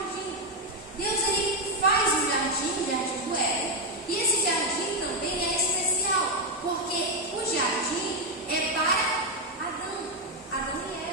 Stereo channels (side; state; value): both; normal; correlation 0.04